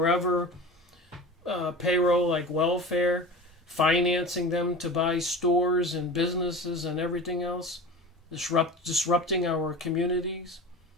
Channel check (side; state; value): both; normal; correlation 0.34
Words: payroll like welfare, financing them to buy stores and businesses and everything else, disrupting our communities,